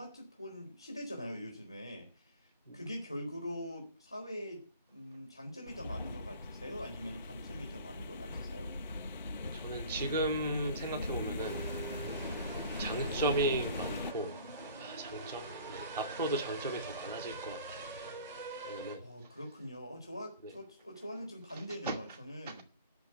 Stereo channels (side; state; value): both; inverted; correlation -0.45